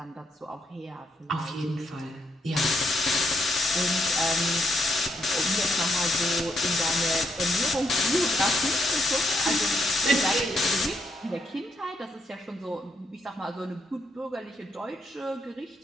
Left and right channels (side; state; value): both; normal; correlation 0.77